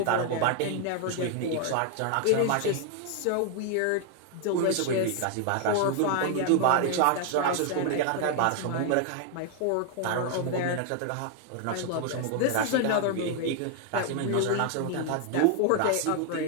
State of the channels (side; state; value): both; different; correlation 0.00